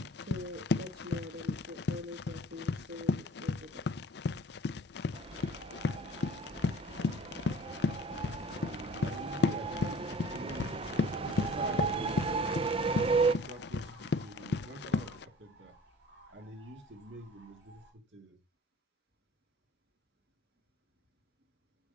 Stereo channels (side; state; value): both; normal; correlation 0.49